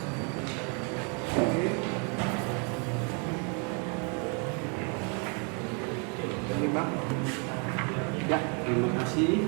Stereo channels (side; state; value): left; quieter; 37.0 dB